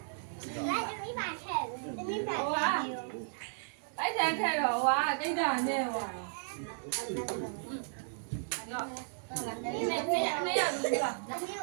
来，这没把菜，这没把菜。 အဲ့တန်ထက်တော့ဟာကိတ်တာနဲ့ဟွာရောနေရောက်နေရောက်ပြီလား 没有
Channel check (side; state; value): left; silent; digital silence